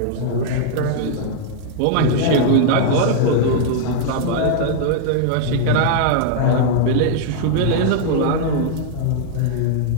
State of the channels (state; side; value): different; both; correlation -0.01